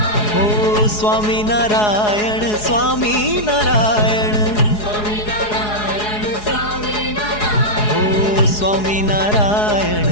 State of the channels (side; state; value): right; late; 4.8 ms